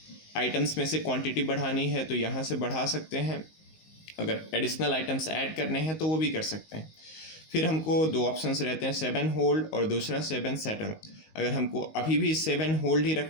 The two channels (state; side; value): late; right; 19 ms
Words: आइटम्स में से क्वांटिटी बढ़ानी है तो यहाँ से बढ़ा सकते हैं, अगर एडिशनल आइटम्स ऐड करने हैं तो वो भी कर सकते हैं। फिर हमको 2 ऑप्शंस रहते हैं, 7 होल्ड और दूसरा 7 सेटल। अगर हमको अभी भी 7 होल्ड ही